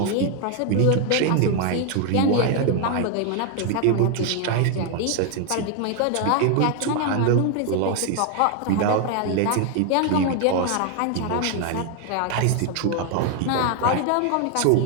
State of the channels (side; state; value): both; different; correlation 0.01